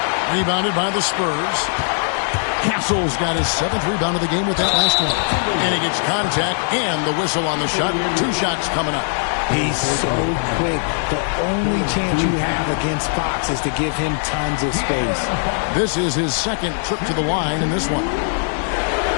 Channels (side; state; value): right; silent; 66 dB below the other